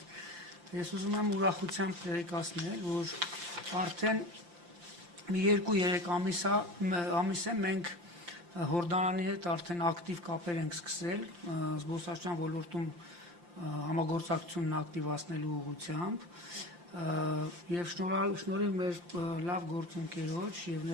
Ես ուզում եմ ուրախությամբ տեղեկացնել, որ արդեն մի 2-3 ամիս է մենք Հորդանանի հետ արդեն ակտիվ կապեր ենք սկսել զբոսաշրջության ոլորտում համագործակցությունն ակտիվացնելու ուղղությամբ եւ շնորհիվ մեր լավ գործընկերոջ եւ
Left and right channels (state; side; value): late; left; 5.8 ms